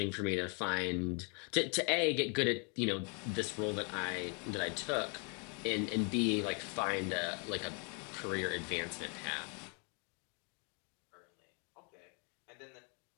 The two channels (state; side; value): quieter; right; 36.4 dB